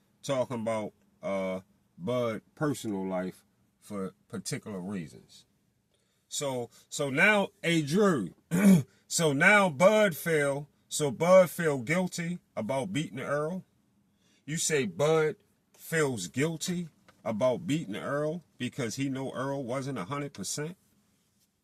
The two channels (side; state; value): both; identical; correlation 1.00